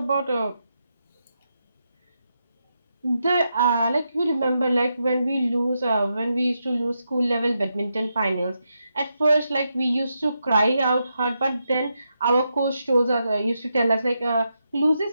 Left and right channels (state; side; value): inverted; both; correlation -0.84